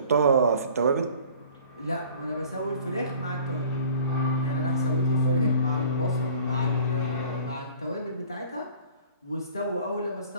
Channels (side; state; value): both; inverted; correlation -0.49